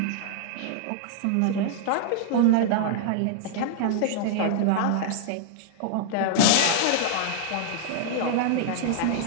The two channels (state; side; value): different; both; correlation -0.01